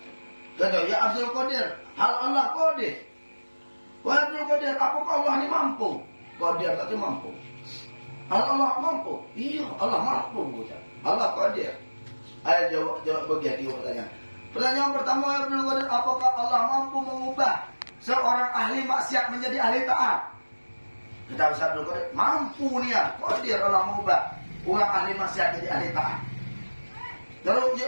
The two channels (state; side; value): inverted; both; correlation -1.00